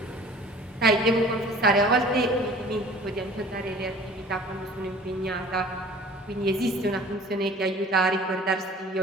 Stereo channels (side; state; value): both; normal; correlation 0.47